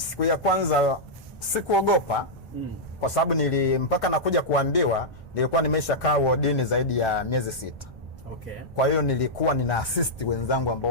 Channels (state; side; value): normal; both; correlation -0.09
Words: ya kwanza sikuogopa, kwa sababu mpaka nakuja kuambiwa nilikuwa nimesha kaa wodini zaidi ya miezi 6. Okay. Kwa hiyo nilikuwa nina assist wenzangu ambao